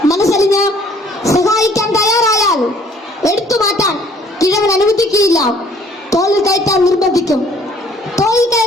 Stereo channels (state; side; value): normal; both; correlation 0.59